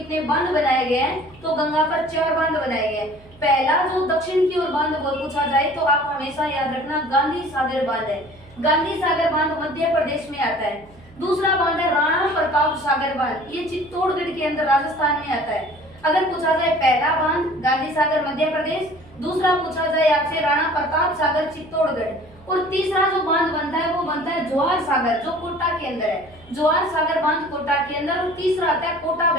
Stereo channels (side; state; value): right; noise; hum, 25 dB below the sound